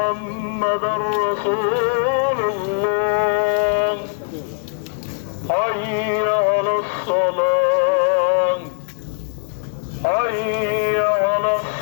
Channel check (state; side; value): silent; right; digital silence